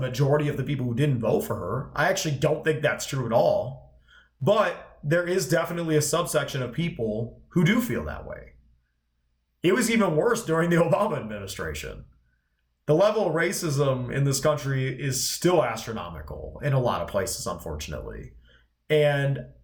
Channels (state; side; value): identical; both; correlation 1.00